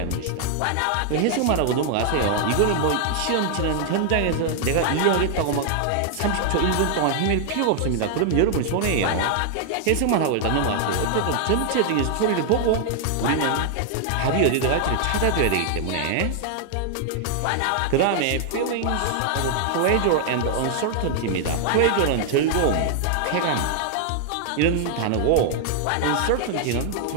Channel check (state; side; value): different; both; correlation 0.00